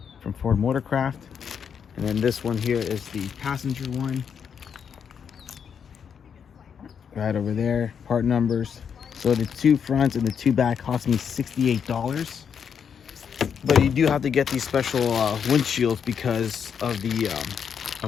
Ford Motorcraft. And then this one here is the passenger one. Right over there, part numbers. So the two fronts and the two back cost me $68. But you do have to get these special windshields because of the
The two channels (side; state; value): right; quieter; 7.3 dB